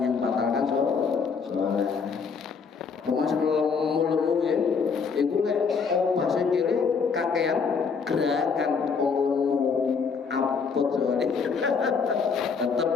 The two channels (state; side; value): quieter; right; 5.6 dB